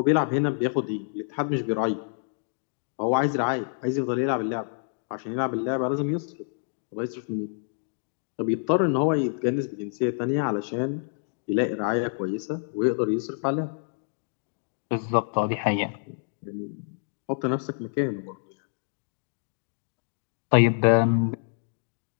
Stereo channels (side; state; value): right; silent; digital silence